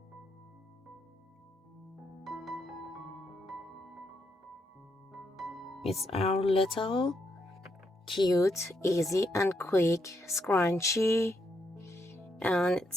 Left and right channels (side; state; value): both; normal; correlation 0.79